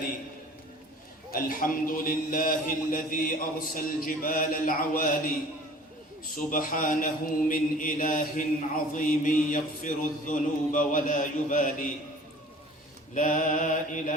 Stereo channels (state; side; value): normal; both; correlation 0.47